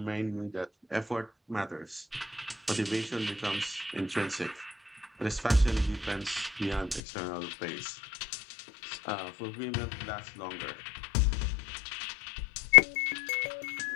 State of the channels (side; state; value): right; drops out; at 7.0 s